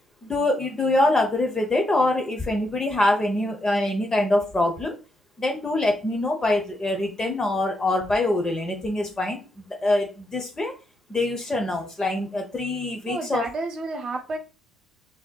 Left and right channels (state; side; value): normal; both; correlation 0.80